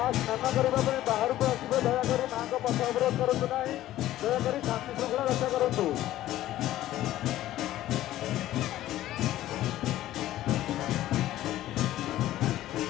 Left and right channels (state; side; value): quieter; right; 14.2 dB